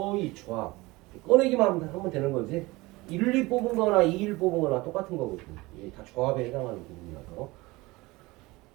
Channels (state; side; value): quieter; left; 21.7 dB